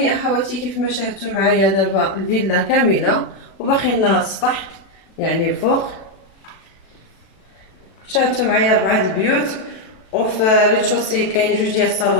اخواتي، كيف ما شاهدتوا معايا دابا الفيلا كامله وباقي لنا السطح يعني الفوق. شاهدتوا معايا 4 البيوت، وفي ريتشوسي كاين 2 ديال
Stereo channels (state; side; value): late; right; 37 ms